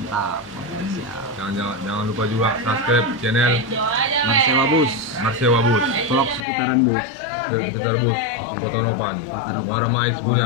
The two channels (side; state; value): right; drops out; at 6.5 s